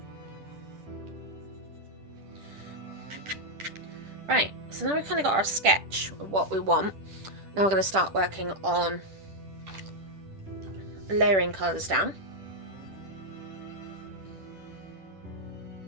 Right, so now we've kind of got our sketch of what we want. Now we're going to start working on layering colours down.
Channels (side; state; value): left; late; 10 ms